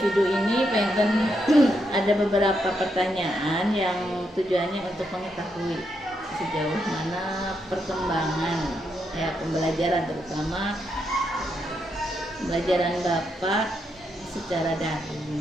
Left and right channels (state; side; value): normal; both; correlation 0.80